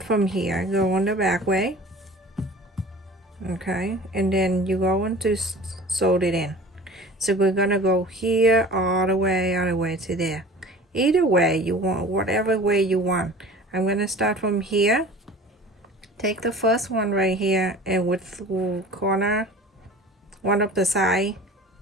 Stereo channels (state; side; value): normal; both; correlation 0.42